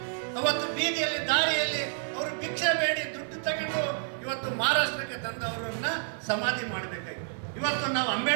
ಅವತ್ತು ಬೀದಿಯಲ್ಲಿ ದಾರಿಯಲ್ಲಿ ಅವರು ಭಿಕ್ಷೆ ಬೇಡಿ ದುಡ್ಡು ತಗೊಂಡು ಇವತ್ತು ಮಹಾರಾಷ್ಟ್ರಕ್ಕೆ ತಂದವರನ್ನ ಸಮಾಧಿ ಮಾಡಬೇಕಾಗಿತ್ತು. ಇವತ್ತು ನಾವು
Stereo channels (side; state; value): left; silent; 58 dB below the other